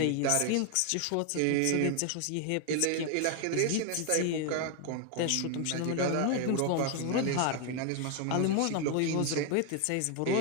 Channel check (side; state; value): both; different; correlation 0.01